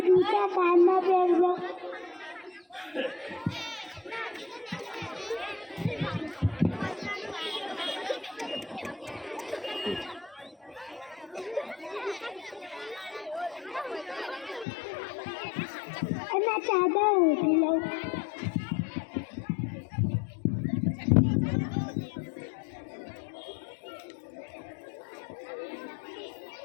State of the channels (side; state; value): right; drops out; at 14.7 s